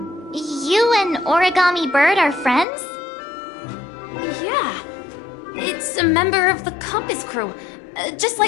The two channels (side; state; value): right; drops out; at 2.7 s